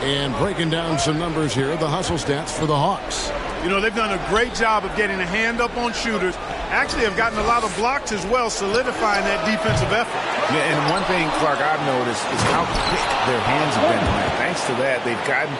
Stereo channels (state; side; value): identical; both; correlation 1.00